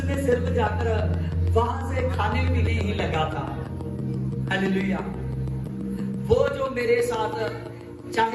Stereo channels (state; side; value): identical; both; correlation 1.00